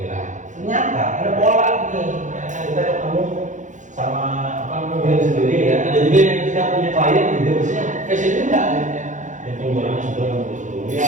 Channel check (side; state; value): left; late; 0.36 ms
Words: Ternyata ada pola nih, yang kita ketemu sama apa namanya sendiri ya. Ada juga yang kita punya klien juga maksudnya fashion juga akhirnya. Yang penjualannya sudah